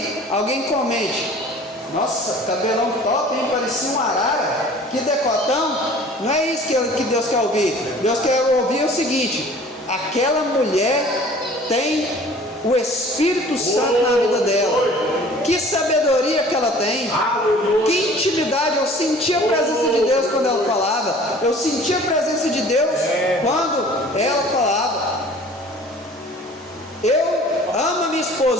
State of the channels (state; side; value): normal; both; correlation 0.48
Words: alguém comente: nossa, cabelão top, hein? Parecia um arara, que decotão. Não é isso que Deus quer ouvir. Deus quer ouvir o seguinte: aquela mulher tem o Espírito Santo na vida dela. Que sabedoria que ela tem. Aleluia. Que intimidade. Eu sentia a presença de Deus quando ela falava. Eu sentia a presença de Deus quando ela falava. Eu amo a minha